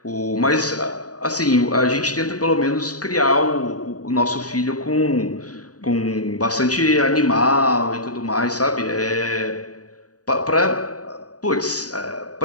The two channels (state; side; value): late; right; 0.68 ms